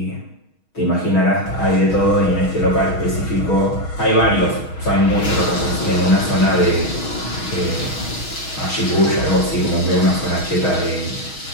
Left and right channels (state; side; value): late; right; 6.3 ms